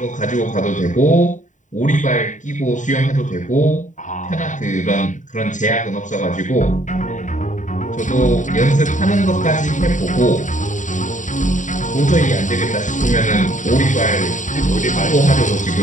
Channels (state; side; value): late; right; 0.36 ms